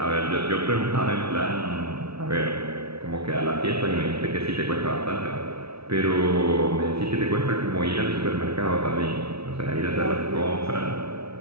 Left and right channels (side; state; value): left; late; 0.77 ms